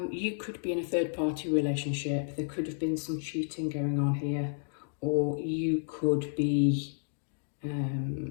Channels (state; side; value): silent; right; digital silence